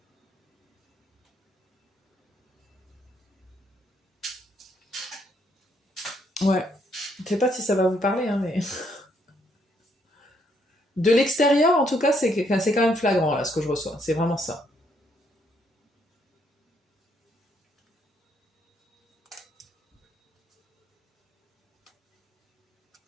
Ouais. Je sais pas si ça va vous parler, hein, mais... De l'extérieur, en tout cas, c'est quand même flagrant, là, ce que je reçois. C'est vraiment ça.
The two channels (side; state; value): both; normal; correlation 0.71